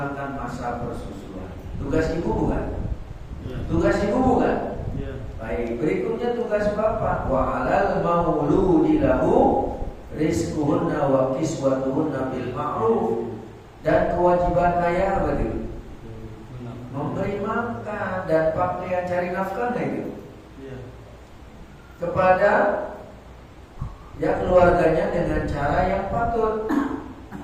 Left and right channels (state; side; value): identical; both; correlation 1.00